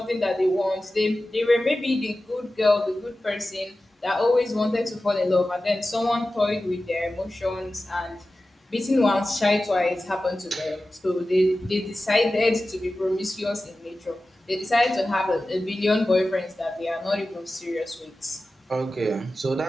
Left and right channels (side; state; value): both; normal; correlation 0.95